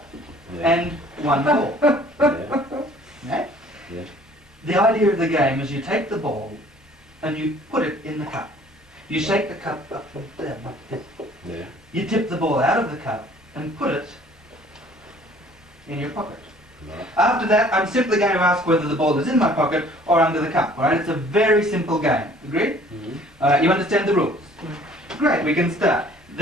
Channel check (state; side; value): normal; both; correlation 0.54